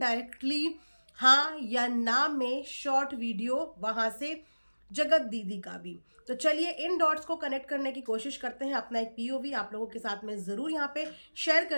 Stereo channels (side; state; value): both; inverted; correlation -1.00